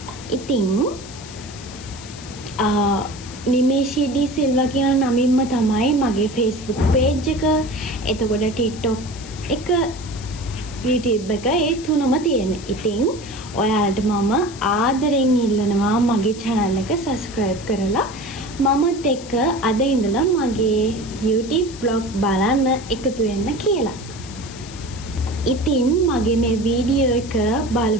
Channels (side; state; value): left; noise; hiss, 17 dB below the sound